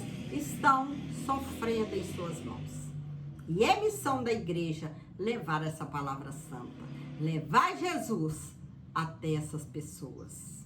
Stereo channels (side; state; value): both; identical; correlation 1.00